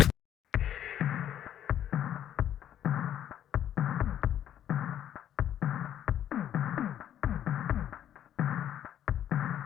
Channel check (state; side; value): quieter; right; 10.6 dB